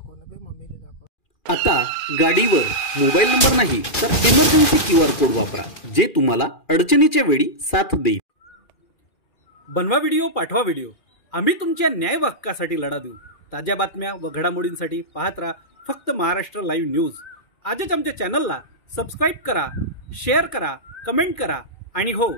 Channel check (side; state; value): right; late; 2.4 ms